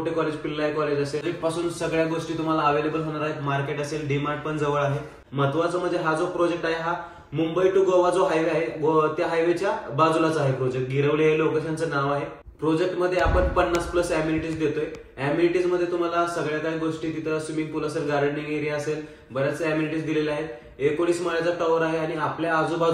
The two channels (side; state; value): both; identical; correlation 1.00